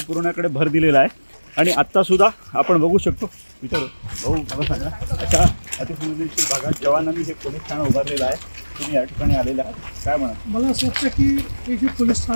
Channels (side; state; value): both; inverted; correlation -1.00